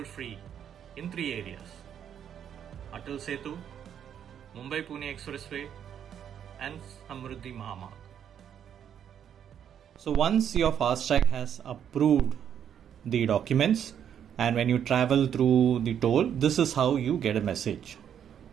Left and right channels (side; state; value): left; quieter; 9.0 dB